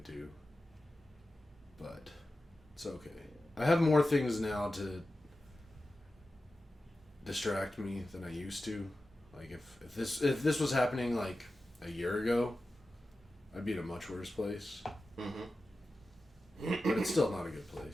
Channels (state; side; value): normal; both; correlation 0.93